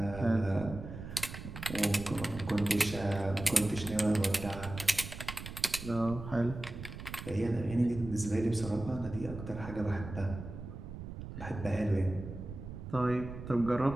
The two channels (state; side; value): noise; right; rumble, 10 dB below the sound